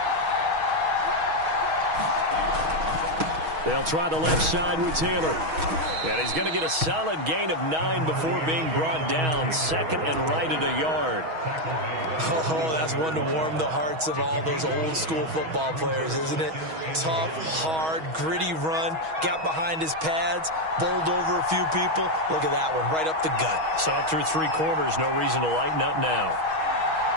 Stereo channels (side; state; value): left; late; 6.3 ms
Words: They'll try the left side with Taylor. And he's going to get a solid gain of 9 before being brought down. 2nd and right at a yard. Oh, that's one to warm the hearts of all those old school football players, isn't it? Tough, hard, gritty run. Got behind his pads, bowled over a few people. Look at that one, right up the gut. So up through 3 quarters, no reason to lighten up now.